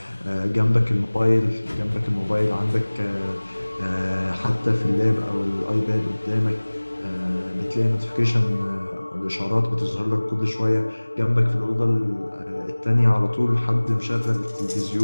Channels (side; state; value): both; inverted; correlation -1.00